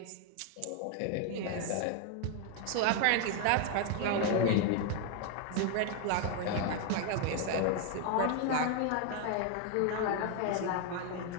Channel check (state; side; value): different; both; correlation 0.01